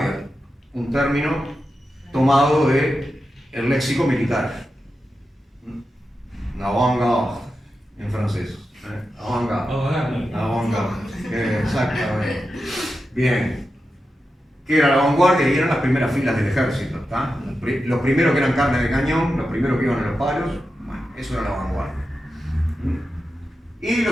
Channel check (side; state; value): both; normal; correlation 0.90